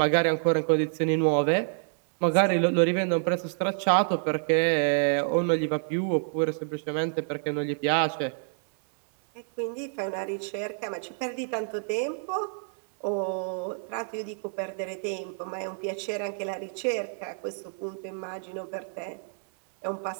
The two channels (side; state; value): left; silent; 59 dB below the other